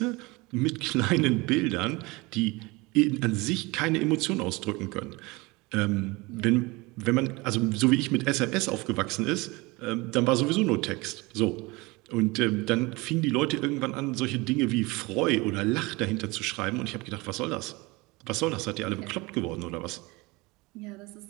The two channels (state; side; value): quieter; left; 23.9 dB